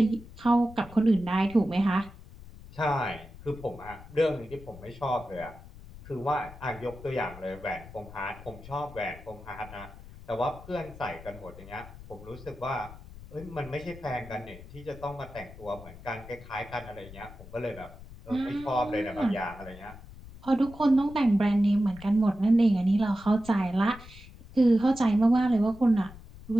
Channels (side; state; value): left; noise; rumble, 17 dB below the sound